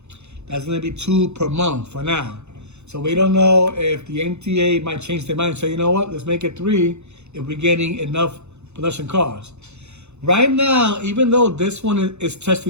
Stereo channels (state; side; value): late; left; 0.81 ms